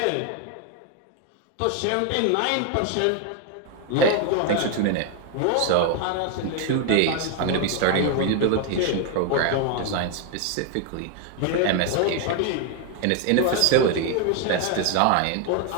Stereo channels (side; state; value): both; different; correlation 0.01